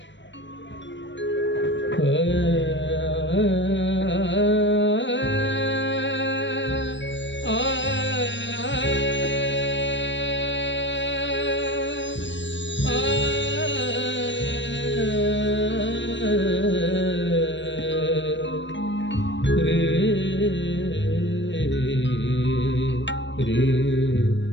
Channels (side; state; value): right; late; 0.53 ms